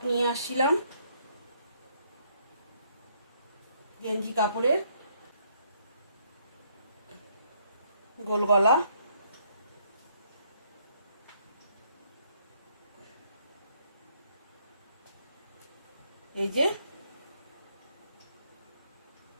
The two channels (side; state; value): both; inverted; correlation -0.69